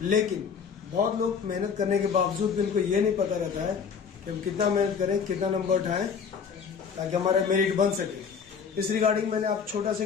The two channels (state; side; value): quieter; right; 6.3 dB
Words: लेकिन बहुत लोग मेहनत करने के बावजूद भी उनको ये नहीं पता रहता है कि हम कितना मेहनत करें, कितना नंबर उठाएं ताकि हमारा मेरिट बन सके। इस रिगार्डिंग मैंने आप छोटा सा